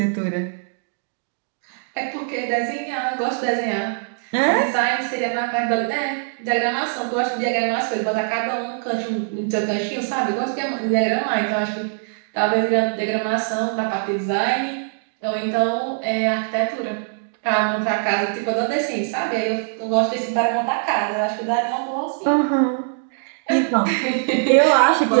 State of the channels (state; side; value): silent; left; digital silence